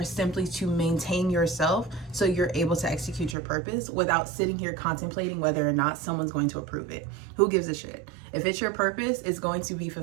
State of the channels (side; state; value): left; drops out; at 3.4 s